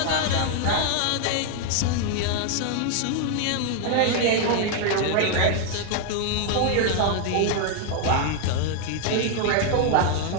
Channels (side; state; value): both; different; correlation 0.00